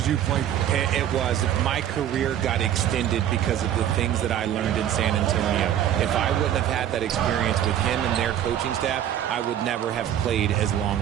you played for. It was. My career got extended because of the things that I learned in San Antonio. If I wouldn't have had that experience with him and their coaching staff, I would never have played as long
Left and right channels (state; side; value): quieter; left; 10.8 dB